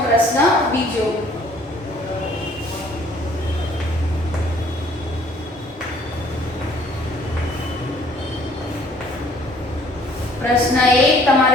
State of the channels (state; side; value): normal; both; correlation 0.59